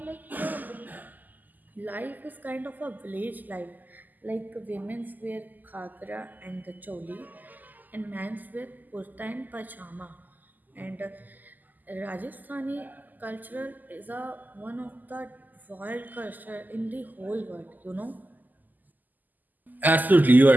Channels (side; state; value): left; late; 0.084 ms